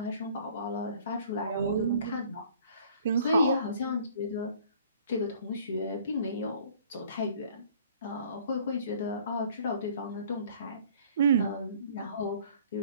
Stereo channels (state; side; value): inverted; both; correlation -0.54